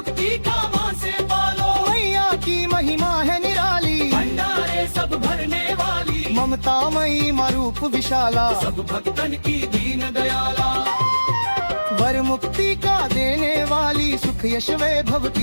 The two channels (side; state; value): both; inverted; correlation -1.00